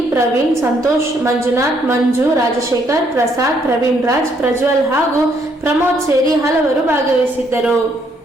ಪ್ರವೀಣ್, ಸಂತೋಷ್, ಮಂಜುನಾಥ್, ಮಂಜು, ರಾಜಶೇಖರ್, ಪ್ರಸಾದ್, ಪ್ರವೀಣ್ ರಾಜ್, ಪ್ರಜ್ವಲ್ ಹಾಗೂ ಪ್ರಮೋದ್ ಸೇರಿ ಹಲವರು ಭಾಗವಹಿಸಿದ್ದರು.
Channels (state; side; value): normal; both; correlation 0.70